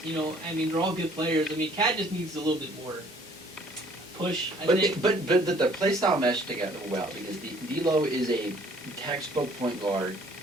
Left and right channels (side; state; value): both; normal; correlation 0.57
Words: You know, I mean, they're all good players. I mean, Cat just needs a little bit more push, I think. But the play style mesh together well because D'Lo is a textbook point guard.